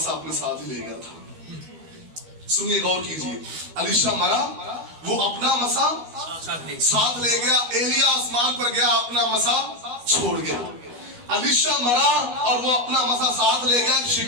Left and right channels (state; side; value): late; left; 12 ms